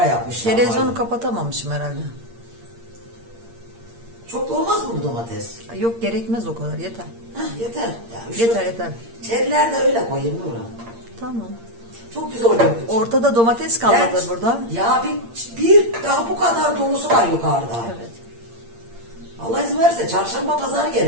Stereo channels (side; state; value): left; late; 8.7 ms